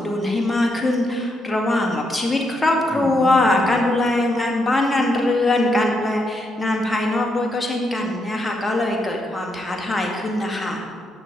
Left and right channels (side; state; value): both; normal; correlation 0.79